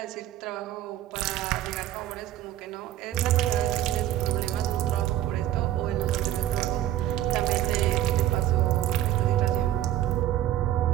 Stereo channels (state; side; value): quieter; left; 12.9 dB